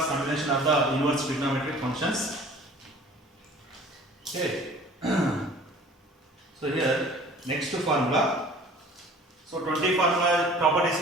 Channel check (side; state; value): both; normal; correlation 0.48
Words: combination of the inverse trigonometric functions. Okay. So here next formula. So 20 formula properties